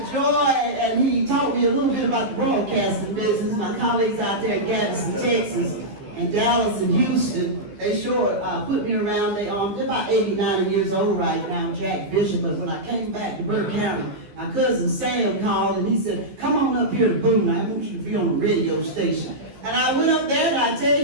joy, and he taught me a little bit about the broadcasting business. My colleagues out there in Gadsden, Texas, and Dallas and Houston, they sure put me around. They're about 89 years old right now, Jack Bishop. But when I came back to Burke County, my cousin Sam called, and he said, come on up here to Boone. I want you to be on the radio station. And I went up there, and I tell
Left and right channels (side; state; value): left; late; 14 ms